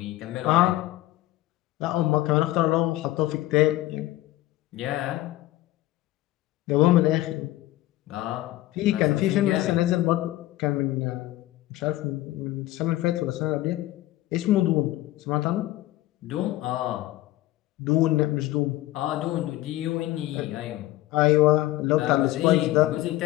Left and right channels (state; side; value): quieter; right; 16.2 dB